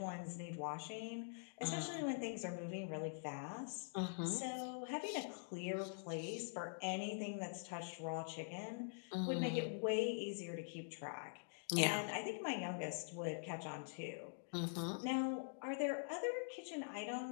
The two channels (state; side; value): silent; right; digital silence